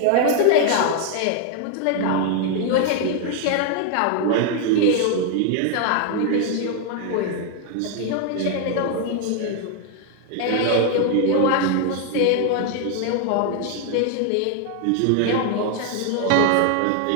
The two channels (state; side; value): different; both; correlation 0.00